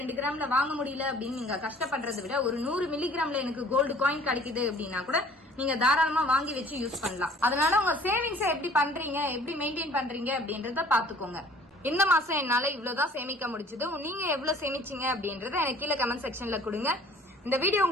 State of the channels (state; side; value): normal; both; correlation 0.52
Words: கிராம்ல வாங்க முடியல அப்படின்னு நீங்க கஷ்டப்படுறதை விட ஒரு 100 மில்லிகிராம்ல எனக்கு கோல்டு காயின் கிடைக்குது அப்படின்னா கூட நீங்க தாராளமா வாங்கி வச்சு யூஸ் பண்ணலாம். அதனால உங்க சேவிங்ஸ எப்படி பண்றீங்க, எப்படி மெயின்டைன் பண்றீங்க அப்படின்றத பாத்துக்கோங்க. இந்த மாசம் என்னால இவ்வளவுதான் சேமிக்க முடிச்சது, நீங்க எவ்வளவு சேமிச்சீங்க அப்படின்றத எனக்கு கீழே கமெண்ட் செக்ஷன்ல கொடுங்க. இந்த வீடியோ